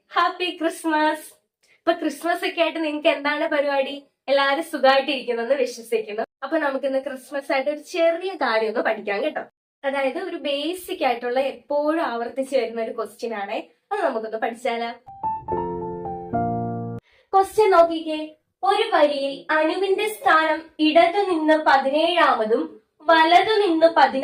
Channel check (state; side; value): identical; both; correlation 1.00